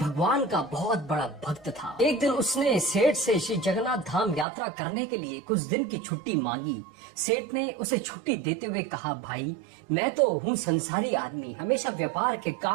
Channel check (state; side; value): drops out; left; at 4.5 s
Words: का बहुत बड़ा भक्त था। एक दिन उसने सेठ से श्री जगन्नाथ धाम यात्रा करने के लिए कुछ दिन की छुट्टी मांगी। सेठ ने उसे छुट्टी देते हुए कहा, भाई मैं तो हूँ संसारी आदमी, हमेशा व्यापार के